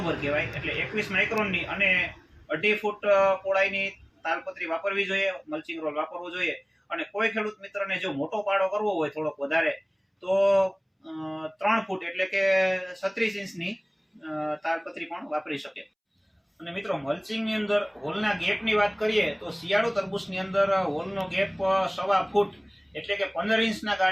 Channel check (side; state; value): both; identical; correlation 1.00